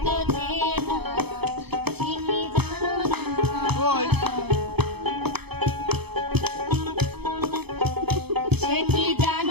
চেনা, ঠিকই জানো না। সে কি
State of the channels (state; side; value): late; left; 0.98 ms